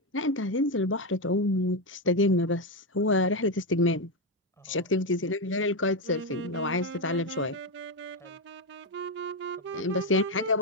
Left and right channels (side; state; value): both; normal; correlation 0.08